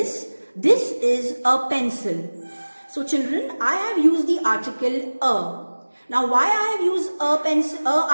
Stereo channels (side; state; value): both; inverted; correlation -1.00